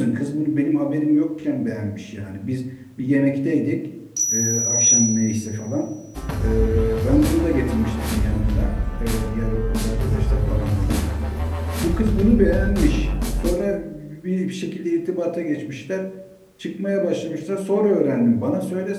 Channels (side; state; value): both; identical; correlation 1.00